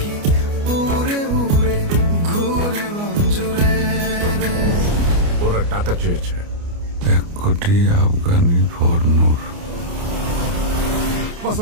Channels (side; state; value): left; late; 29 ms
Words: উড়ে উড়ে ঘুরে মঞ্জুরে রে। ওরা টাকা চেয়েছে 1 কোটি আফগানি ফর নূর।